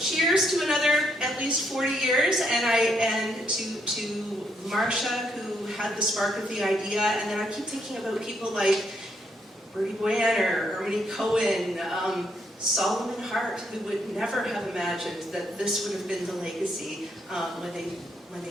to another at least 40 years, and to Marcia, who had the spark of the idea. And then I keep thinking about people like Bertie Boyanner, Ernie Cohen, Solomon Hart, who would never have imagined that this would have been the legacy when they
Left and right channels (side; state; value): both; normal; correlation 0.75